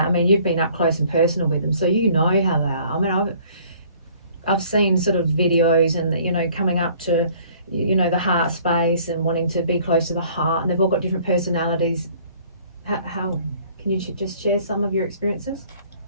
I mean, you've been up close and personal with them, so you know how they are. I mean, I've seen sort of videos and, you know, coming up to, you know, the heart space and wanting to be close to the heart, and they've all got different personalities. How can you just share some of your experiences?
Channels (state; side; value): inverted; both; correlation -0.56